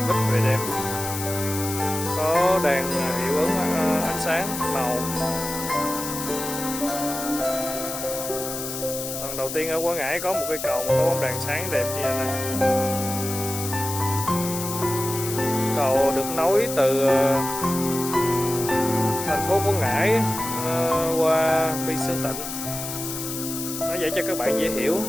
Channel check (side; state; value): left; noise; hiss, 6 dB below the sound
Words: Bích về đêm có đèn hiệu ứng ánh sáng màu. Lần đầu tiên ở Quảng Ngãi có một cây cầu mà có bóng đèn sáng đẹp như thế này. Cầu được nối từ thành phố Quảng Ngãi qua Phi Sơn Tịnh. Nó vậy cho các bạn dễ hiểu.